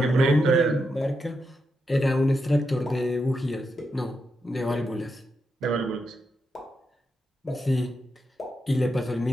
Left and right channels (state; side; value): normal; both; correlation 0.84